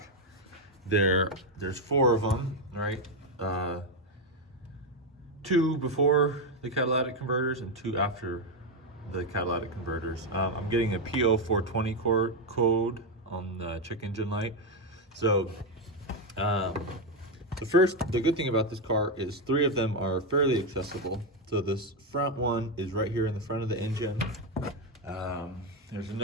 there's 4 of them, right? 2 before the catalytic converters and 2 after the catalytic converters. I'm getting a PO420 code on the check engine light. So the good thing about this car is 3 of them are fairly accessible. So this front one is right here in the front of the engine. There's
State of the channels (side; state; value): both; normal; correlation 0.06